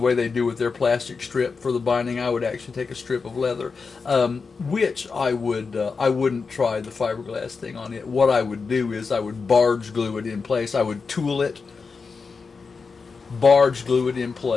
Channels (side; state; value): right; quieter; 4.9 dB